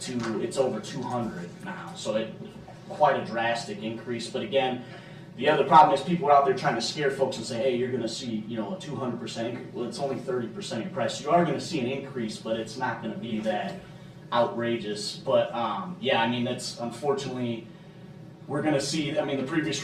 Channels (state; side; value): identical; both; correlation 1.00